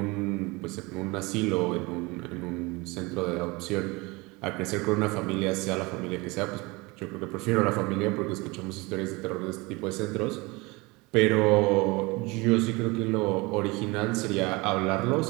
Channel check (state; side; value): quieter; left; 24.7 dB